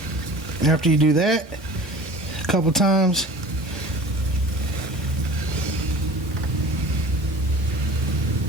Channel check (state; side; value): normal; both; correlation 0.41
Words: after you do that a couple times,